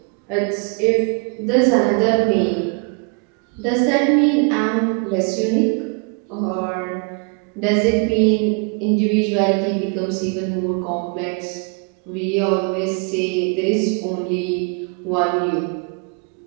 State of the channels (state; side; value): quieter; left; 35.3 dB